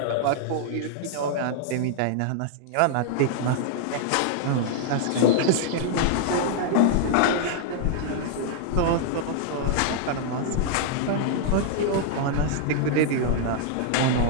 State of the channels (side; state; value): both; different; correlation -0.01